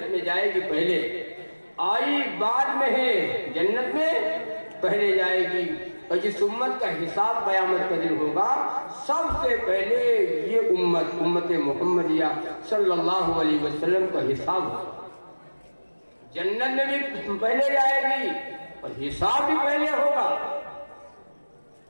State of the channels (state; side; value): inverted; both; correlation -1.00